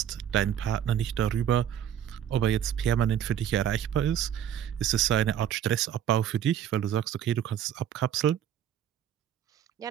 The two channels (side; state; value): left; quieter; 9.9 dB